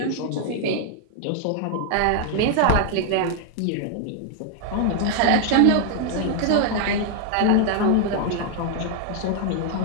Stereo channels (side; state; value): both; different; correlation 0.00